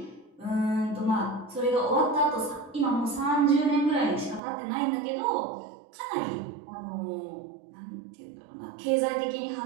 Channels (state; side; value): drops out; left; at 4.4 s